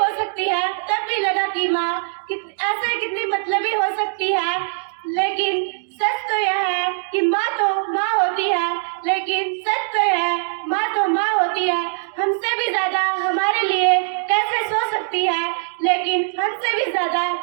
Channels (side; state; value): left; silent; digital silence